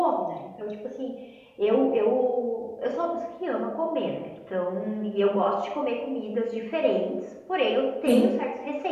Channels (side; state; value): both; identical; correlation 1.00